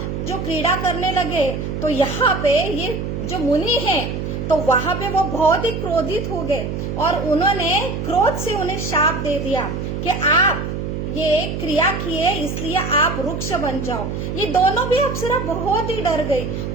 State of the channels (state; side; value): noise; right; hum, 4 dB below the sound